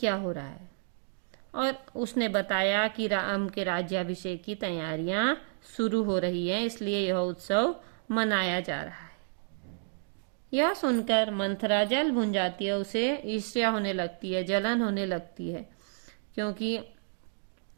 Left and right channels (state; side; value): silent; left; digital silence